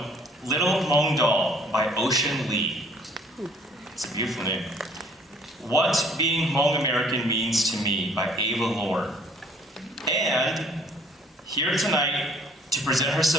Little Hmong Doll by Ocean Lee. It's a beautiful name. What Being Hmong American Means to Me by Ava Lore. And here tonight to present her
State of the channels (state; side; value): normal; both; correlation 0.58